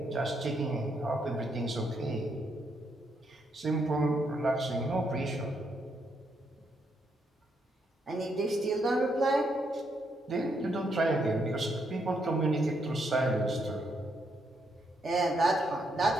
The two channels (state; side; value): normal; both; correlation 0.77